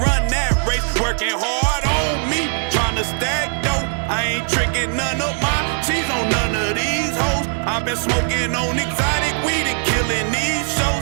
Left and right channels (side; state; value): left; silent; digital silence